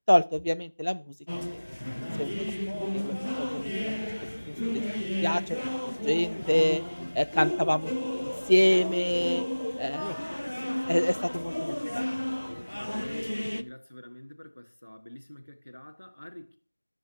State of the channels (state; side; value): inverted; both; correlation -1.00